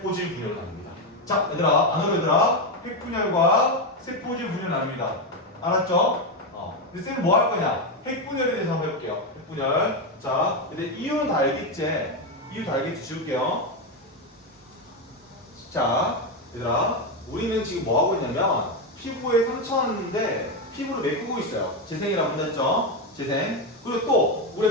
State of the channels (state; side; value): normal; both; correlation 0.09